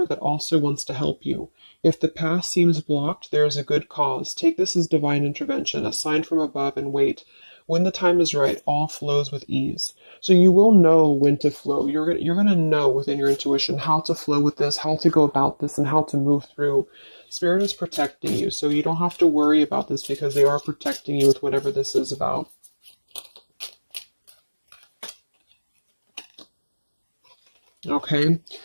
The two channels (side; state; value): both; inverted; correlation -1.00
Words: that also wants to help you. If the path seems blocked, there is a good cause. Take this as divine intervention, a sign from above, and wait. When the time is right, all flows with ease. So you will know when to flow. You're gonna know within your intuition how to flow with this, how to go about this, and how to move through. Spirit is protecting you, so you don't have to worry about this because they are protecting you with whatever this is about. Okay,